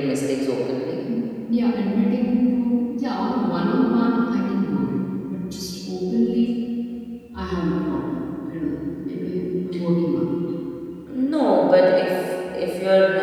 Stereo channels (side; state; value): both; identical; correlation 1.00